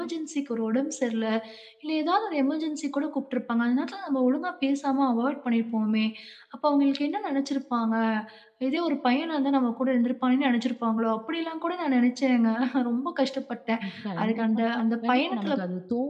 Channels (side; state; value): both; identical; correlation 1.00